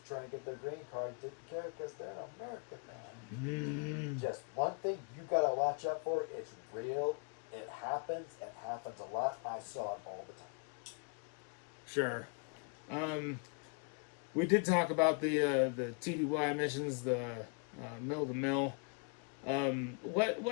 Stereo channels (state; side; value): quieter; right; 38.3 dB